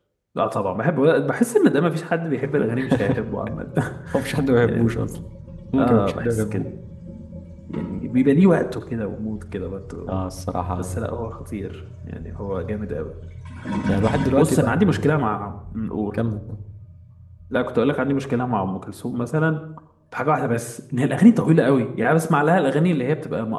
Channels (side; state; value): both; identical; correlation 1.00